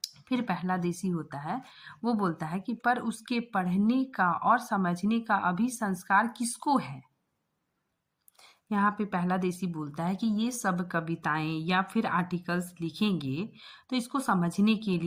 फिर पहला देसी होता है, वो बोलता है कि पर उसके पढ़ने का और समझने का अभी संस्कार किसको है। यहाँ पे पहला देसी बोलता है कि ये सब कविताएं या फिर आर्टिकल्स लिखेंगे तो इसको समझने के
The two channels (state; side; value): identical; both; correlation 1.00